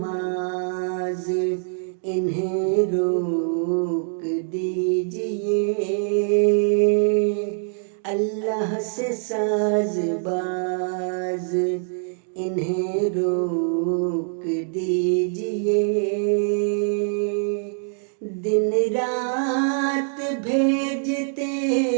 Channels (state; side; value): silent; left; 63 dB below the other